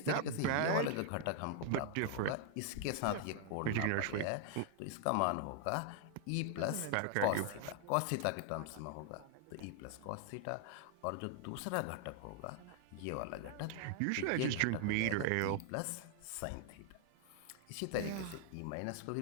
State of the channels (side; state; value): both; different; correlation 0.00